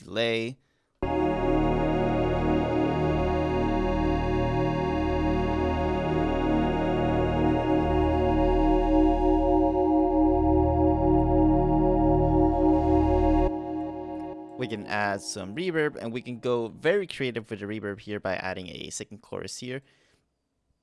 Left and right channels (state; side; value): identical; both; correlation 1.00